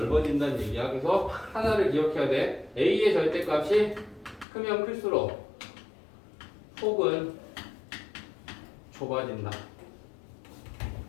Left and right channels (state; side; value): drops out; right; at 4.5 s